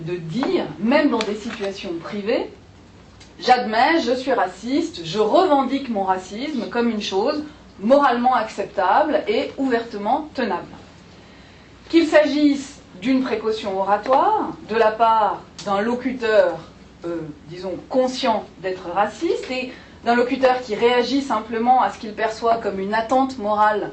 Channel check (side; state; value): both; identical; correlation 1.00